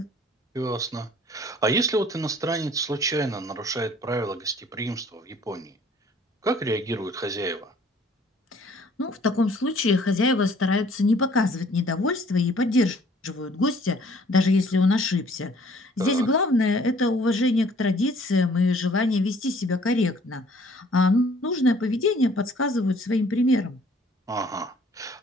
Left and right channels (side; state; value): both; normal; correlation 0.56